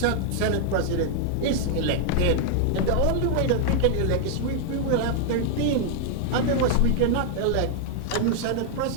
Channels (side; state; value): both; different; correlation 0.00